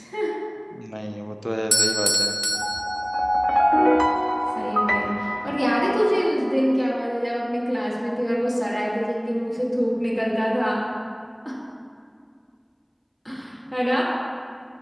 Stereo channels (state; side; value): identical; both; correlation 1.00